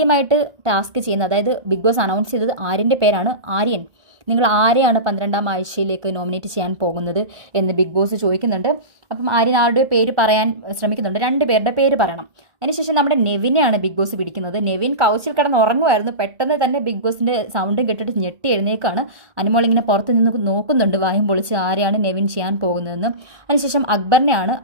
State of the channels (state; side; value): late; left; 1.2 ms